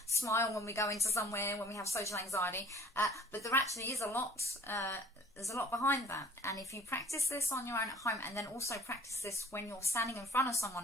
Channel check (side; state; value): both; normal; correlation 0.50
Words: smile when we go into somewhere, when we have social anxiety, but there actually is a lot, there's a lot behind that, and if you practice this on your own at home, and then also practice this when you're standing in front of